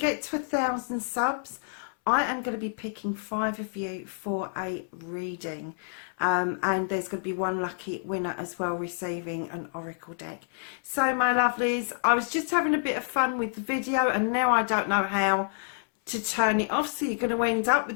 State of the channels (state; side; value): silent; right; 59 dB below the other